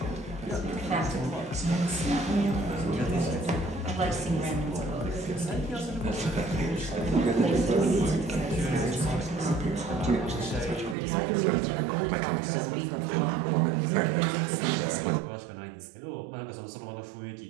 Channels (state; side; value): drops out; left; at 11.0 s